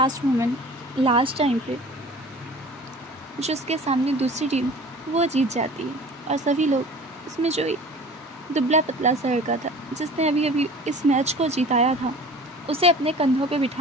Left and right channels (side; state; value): both; normal; correlation 0.43